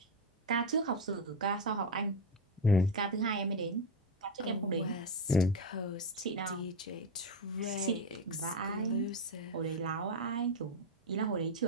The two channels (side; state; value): both; normal; correlation 0.09